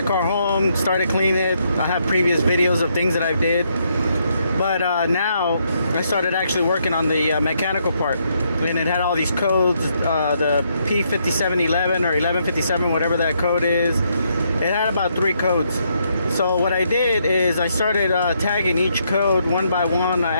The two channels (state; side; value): inverted; both; correlation -0.75